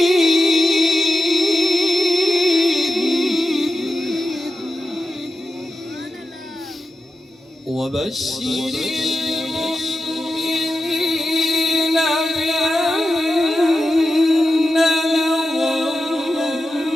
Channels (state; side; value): normal; both; correlation 0.91